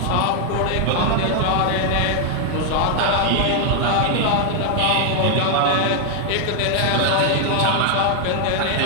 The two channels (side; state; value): both; different; correlation 0.00